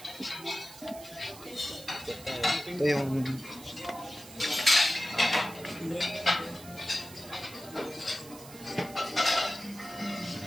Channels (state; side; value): noise; right; hiss, 17 dB below the sound